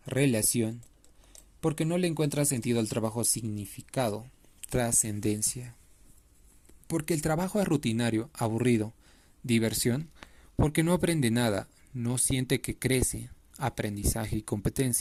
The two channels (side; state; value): both; identical; correlation 1.00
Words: Relación. Porque no le encuentra sentido al trabajo. Significado. Trascendencia. Porque el trabajo es rutinario, aburrido. Diversión. Porque no aprende nada, no siente que crece. Aprendizaje y